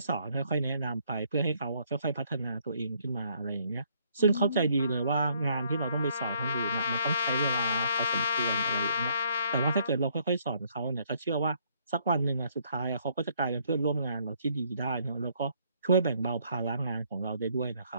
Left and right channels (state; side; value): inverted; both; correlation -0.67